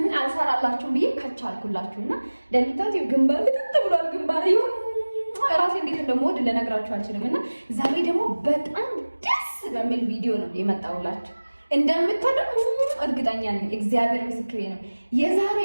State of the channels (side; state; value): both; inverted; correlation -1.00